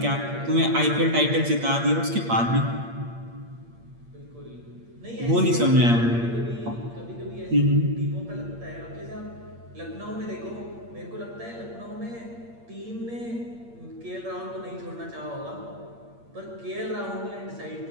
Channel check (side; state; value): left; late; 8.6 ms